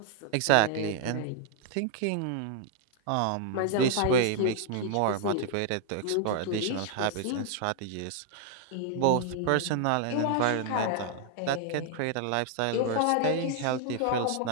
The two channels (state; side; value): different; both; correlation 0.00